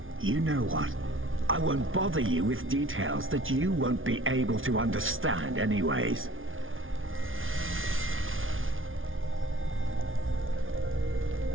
You know what? I won't bother you with details that you won't be able to understand anyways.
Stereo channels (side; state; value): left; late; 0.58 ms